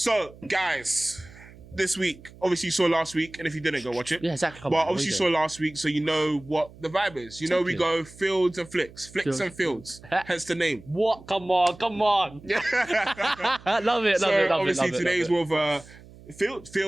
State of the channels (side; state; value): right; noise; hum, 21 dB below the sound